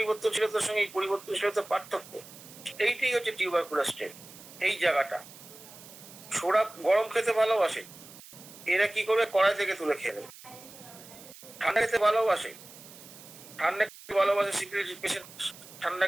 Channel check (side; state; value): right; noise; hiss, 18 dB below the sound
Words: সঙ্গে এই পরিবর্তনশীলতার পার্থক্য। এইটাই হচ্ছে টিউবারকুলার স্টেট। এই জায়গাটা সোরা গরম খেতে ভালোবাসে, এরা কি করবে, কড়াই থেকে তুলে খেয়ে নেবে। ঠান্ডা খেতে ভালোবাসে, ঠান্ডা খেতে ভালোবাসে, সিপিলিস পেশেন্ট ঠান্ডা